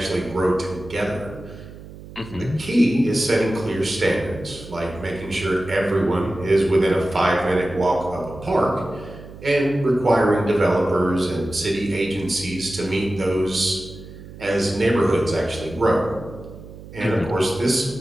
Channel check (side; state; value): right; noise; hum, 16 dB below the sound